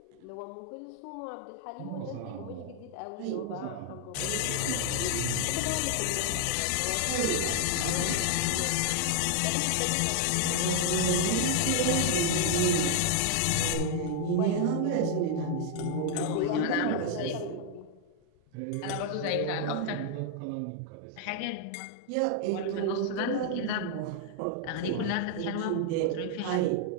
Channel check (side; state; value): both; different; correlation 0.00